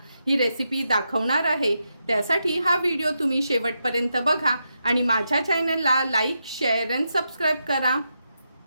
ही रेसिपी दाखवणार आहे। त्यासाठी हा व्हिडिओ तुम्ही शेवटपर्यंत बघा आणि माझ्या चॅनलला लाईक, शेअर आणि सबस्क्राईब करा।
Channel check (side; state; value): both; inverted; correlation -0.85